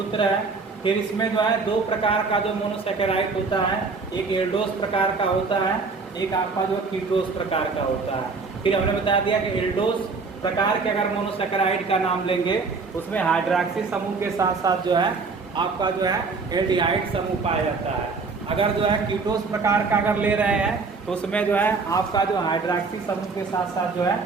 है। फिर इसमें जो है 2 प्रकार का जो मोनोसैकेराइड होता है, एक एल्डोस प्रकार का होता है, एक आपका जो कीटोस प्रकार का होता है। फिर हमने बता दिया कि एल्डोस प्रकार के अगर मोनोसैकेराइड का नाम लेंगे उसमें हाइड्रॉक्सी समूह के साथ साथ जो है आपका जो है एल्डिहाइड समूह पाया जाता है। अगर जो है कीटोस प्रकार का अगर ले रहे हैं तो उसमें जो है आपका जो हाइड्रॉक्सी समूह के साथ साथ जो है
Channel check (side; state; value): left; quieter; 4.4 dB